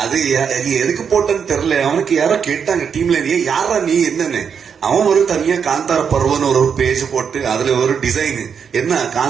அது எதுக்கு போட்டன்னு தெரியல. அவனுக்கு யாரோ கேட்டாங்க டீம்ல, யாரா நீ என்னன்னு. அவன் ஒரு தனியா காந்தார பருவன்னு ஒரு பேஜ் போட்டு அதுல ஒரு டிசைன், என்ன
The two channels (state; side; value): quieter; left; 6.9 dB